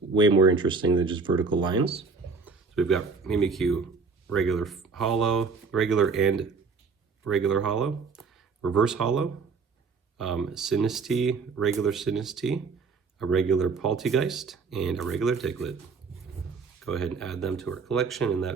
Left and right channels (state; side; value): quieter; left; 4.8 dB